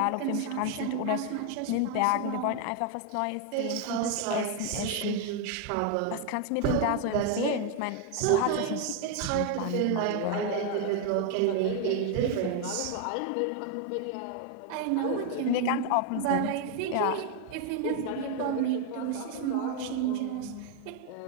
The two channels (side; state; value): both; different; correlation 0.01